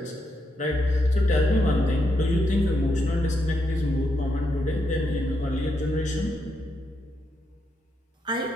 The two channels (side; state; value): both; normal; correlation 0.81